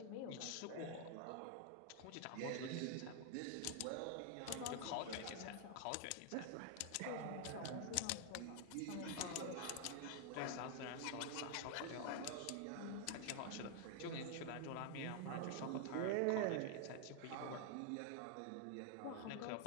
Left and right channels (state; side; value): different; both; correlation 0.00